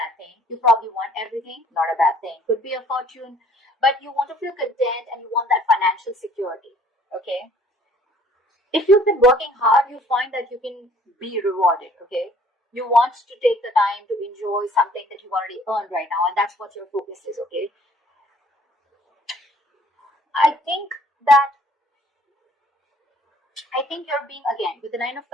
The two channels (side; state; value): both; normal; correlation 0.57